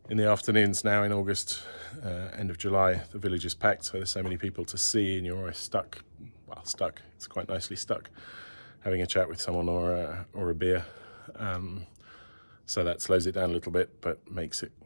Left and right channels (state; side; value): inverted; both; correlation -1.00